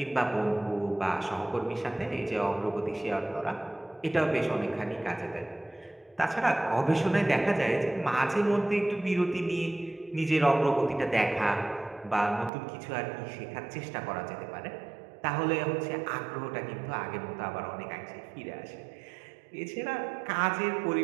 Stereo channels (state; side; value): drops out; left; at 12.5 s